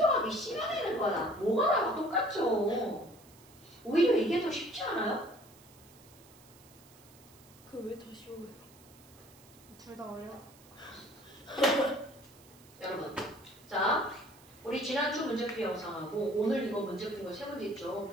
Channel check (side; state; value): right; noise; hiss, 24 dB below the sound